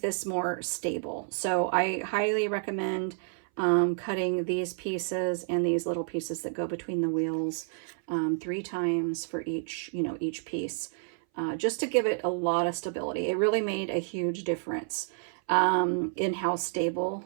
more stable. So I highly recommend cutting these pieces and these little pieces that go between the wheels 3 times for each, you know, each piece, just to give it a lot of stability. It really made a huge difference in how stable,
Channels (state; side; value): silent; left; 58 dB below the other